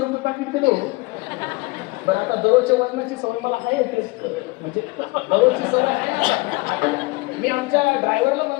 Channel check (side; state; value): right; quieter; 24.2 dB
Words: पाकिट दिलं. बरं, आता दररोजच्या वजनाची सवय मला आहे, म्हणजे दररोजची सवय आहे. मी आमच्या ड्रायव्हरला